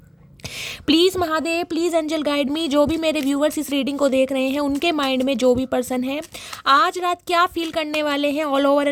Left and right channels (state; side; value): identical; both; correlation 1.00